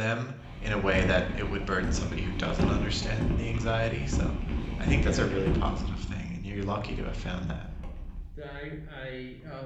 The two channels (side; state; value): both; identical; correlation 1.00